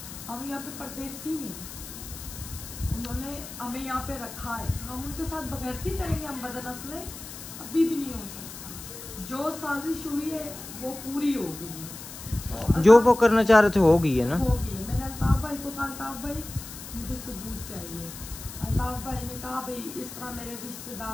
हम यहाँ पे परदेसी हैं, उन्होंने हमें यहाँ पे रखा है, हम उनके साथ बगैरती करेंगे, हम बदनस्लें अभी भी नहीं हो सकता। जो साजिश हुई है वो पूरी हो गई है, तो जो वो करना चाह रहे थे हो गई है ना, हो गई है। मैंने अल्ताफ़ भाई को कहा अल्ताफ़ भाई मुझे सबूत चाहिए। अल्ताफ़ भाई ने कहा भाई इस तरह मेरे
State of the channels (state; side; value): noise; left; hiss, 12 dB below the sound